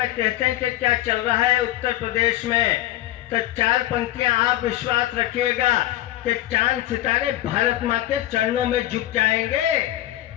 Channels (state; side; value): quieter; right; 14.7 dB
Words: कहते हैं कि क्या चल रहा है उत्तर प्रदेश में, तो 4 पंक्तियां आप विश्वास रखिएगा कि चांद सितारे भारत माँ के चरणों में झुक जाएंगे,